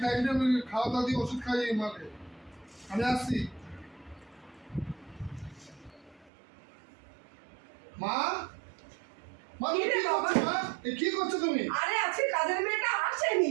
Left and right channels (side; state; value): left; drops out; at 6.3 s